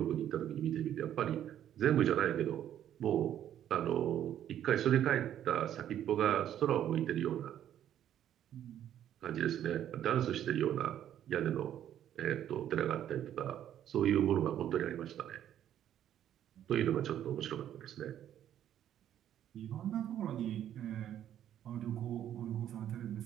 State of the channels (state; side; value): quieter; left; 10.8 dB